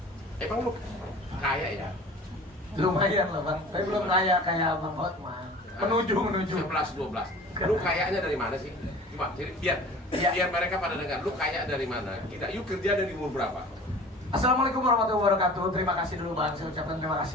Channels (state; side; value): normal; both; correlation 0.42